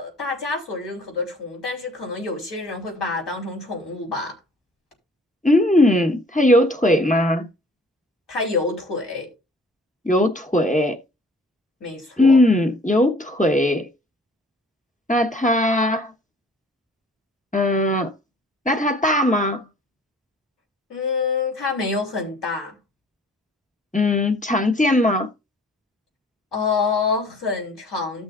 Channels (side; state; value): both; normal; correlation 0.53